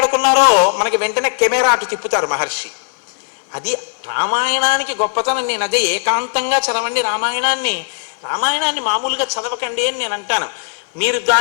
మనకి వెంటనే కెమెరా అటు తిప్పుతారు మహర్షి. అది రామాయణానికి గొప్పతనం. నేను అదే ఏకాంతంగా చదవండి రామాయణాన్ని, రామాయణాన్ని మామూలుగా చదవకండి అని నేను అంటాను. మీరు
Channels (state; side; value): silent; right; 57 dB below the other